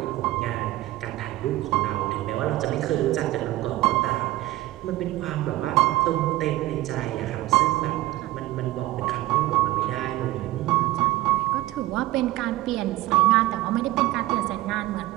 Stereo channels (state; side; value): quieter; left; 16.8 dB